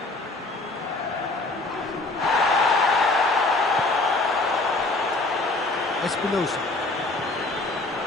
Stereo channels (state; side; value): quieter; right; 3.1 dB